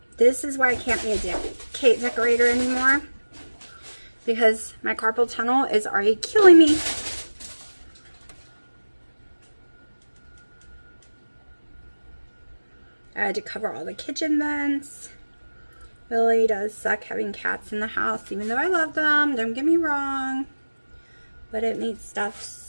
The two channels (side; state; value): both; inverted; correlation -1.00